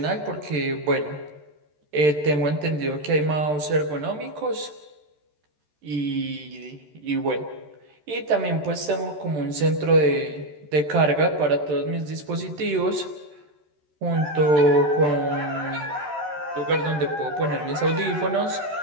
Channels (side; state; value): left; late; 13 ms